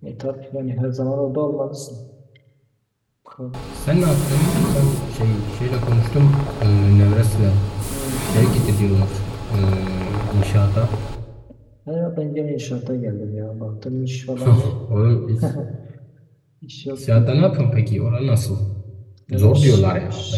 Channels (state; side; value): identical; both; correlation 1.00